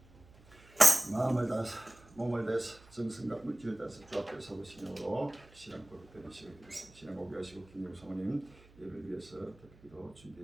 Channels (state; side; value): noise; right; hum, 24 dB below the sound